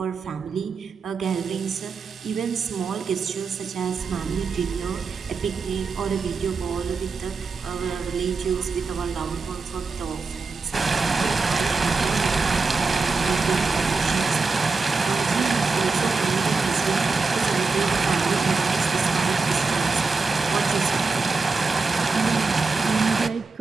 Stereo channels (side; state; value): left; quieter; 4.3 dB